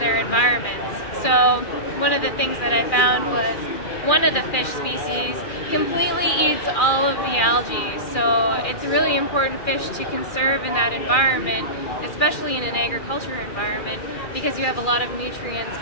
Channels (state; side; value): late; right; 2.4 ms